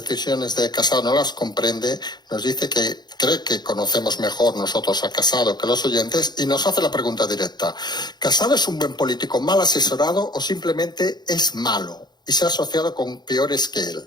de Casado no las comprende, nos dice que cree que conocemos mejor nosotros a Casado que los oyentes y nos hace la pregunta directa. ¿Casado es un buen político mal asesorado o simplemente es malo y se ha asociado con peores que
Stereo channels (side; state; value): right; late; 0.21 ms